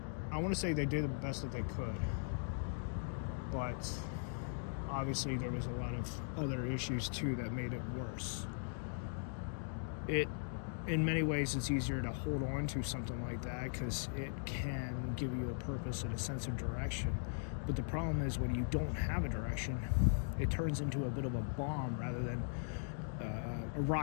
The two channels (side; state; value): right; silent; digital silence